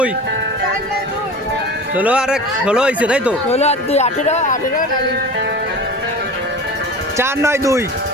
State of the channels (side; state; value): both; normal; correlation 0.34